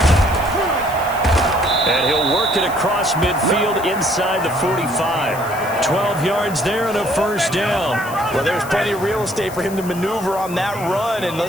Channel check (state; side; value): noise; left; hiss, 16 dB below the sound